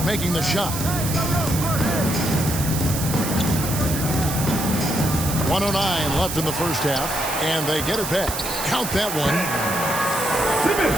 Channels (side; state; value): right; noise; hiss, 5 dB below the sound